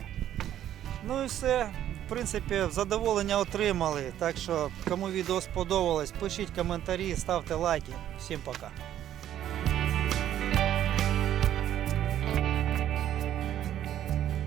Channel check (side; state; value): left; quieter; 11.4 dB